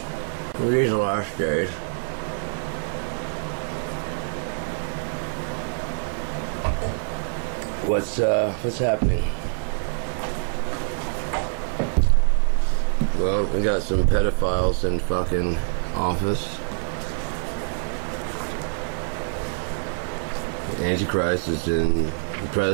these are the last days. What's happening? Well, we got some pedophiles in fucking office. Antichrist is in the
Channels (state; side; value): silent; left; digital silence